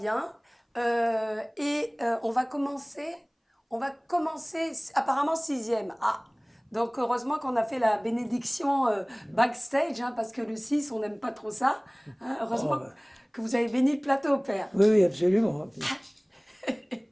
On va commencer apparemment sixième. Ah, donc heureusement qu'on a fait la bénédiction backstage, hein, parce que le 6, on n'aime pas trop ça. Hein. Heureusement Oh, bah. que vous avez béni le plateau, Père. Oui, oui, absolument.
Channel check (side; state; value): both; identical; correlation 1.00